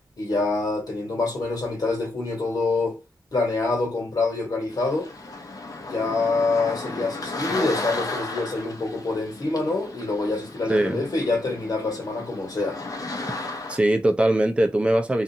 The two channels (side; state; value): both; normal; correlation 0.81